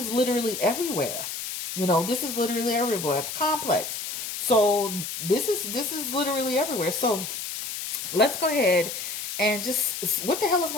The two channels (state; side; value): noise; left; hiss, 6 dB below the sound